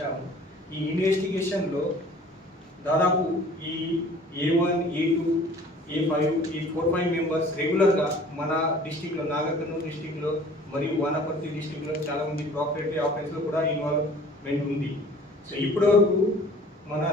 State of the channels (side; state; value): both; normal; correlation 0.49